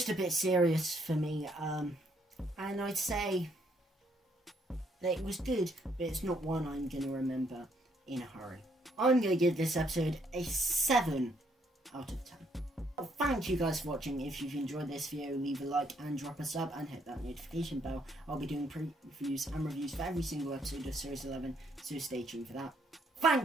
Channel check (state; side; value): normal; both; correlation 0.70